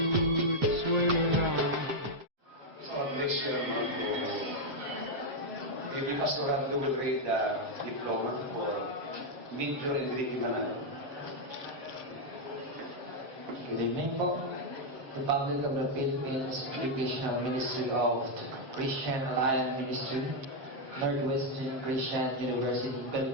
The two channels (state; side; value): late; left; 7.6 ms